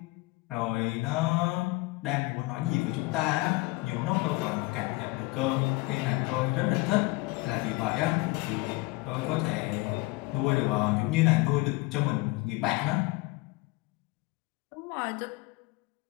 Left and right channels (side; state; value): right; quieter; 23.1 dB